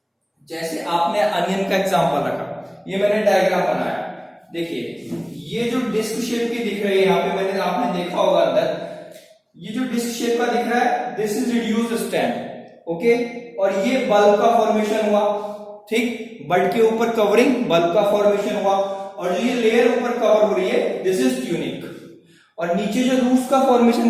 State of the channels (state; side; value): identical; both; correlation 1.00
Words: जैसे आपने अनियन का एग्जांपल रखा, ये मैंने डायग्राम बनाया. देखिए ये जो डिस्क शेप की दिख रही है यहाँ पे, मैंने आपने देखा होगा अंदर, ये जो डिस्क शेप का दिख रहा है this is reduced stem. Okay, और ये बल्ब का फॉर्मेशन हुआ. ठीक, बल्ब के ऊपर कवरिंग, बल्ब का फॉर्मेशन हुआ, और जो ये लेयर ऊपर कवर हो रही है दिस इज ट्यूनिक. और नीचे जो रूट्स का फॉर्मेशन